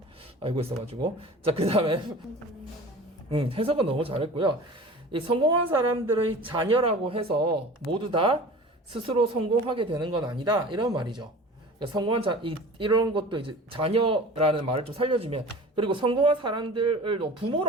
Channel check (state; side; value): normal; both; correlation 0.40